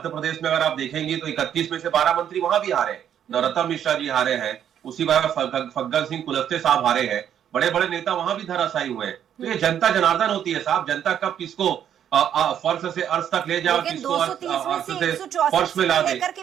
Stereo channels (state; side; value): quieter; left; 9.6 dB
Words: प्रदेश में अगर आप देखेंगे तो 31 में से 12 मंत्री वहां भी हारे, नरोत्तम मिश्रा जी हारे हैं, उसी बार फग्गन सिंह कुलस्ते साहब हारे हैं, बड़े बड़े नेता वहां भी धराशायी हुए हैं। तो ये जनता जनार्दन होती है साहब, जनता कब किसको फर्श से अर्श तक ले जाओ, किसको अर्श से फर्श में ला दे। लेकर